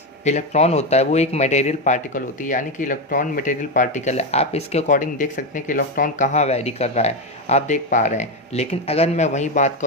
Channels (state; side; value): normal; both; correlation 0.11